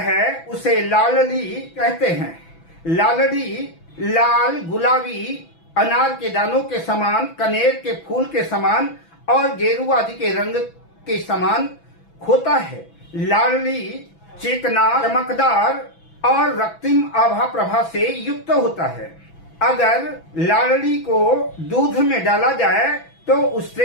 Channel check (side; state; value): right; late; 6.0 ms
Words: उसे लालड़ी कहते हैं। लालड़ी लाल, गुलाबी, अनार के दानों के समान, कनेर के फूल के समान और गेरू आदि के रंग के समान होता है। लालड़ी चिकना, चमकदार और रक्तिम आभा प्रभा से युक्त होता है। अगर लालड़ी को दूध में डाला जाए तो